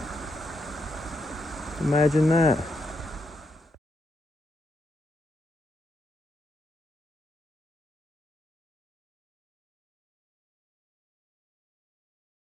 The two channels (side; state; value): both; normal; correlation 0.81